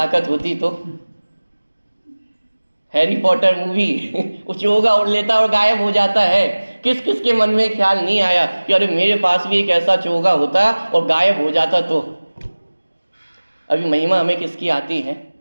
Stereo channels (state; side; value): inverted; both; correlation -1.00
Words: होती तो। हैरी पॉटर मूवी वो चोगा उड़ लेता और गायब हो जाता है, किस के मन में ख्याल नहीं आया कि अरे मेरे पास भी एक ऐसा चोगा होता और गायब हो जाता तो। अभी महिमा हमें किसकी आती है?